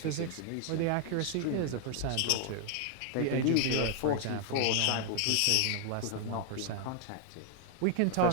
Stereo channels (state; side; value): different; both; correlation 0.00